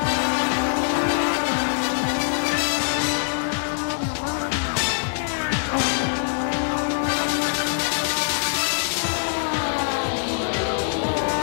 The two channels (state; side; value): silent; right; digital silence